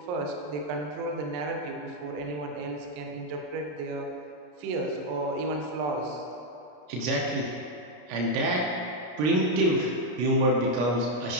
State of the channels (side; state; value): left; late; 33 ms